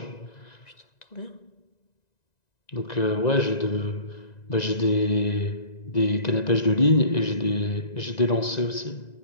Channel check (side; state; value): right; late; 1.9 ms